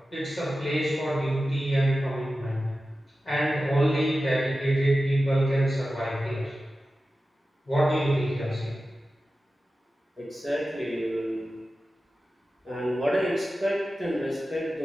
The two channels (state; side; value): normal; both; correlation 0.94